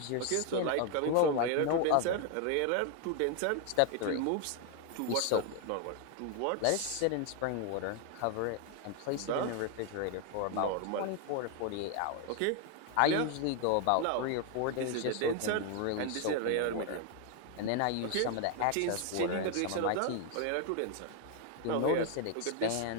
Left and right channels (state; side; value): different; both; correlation 0.01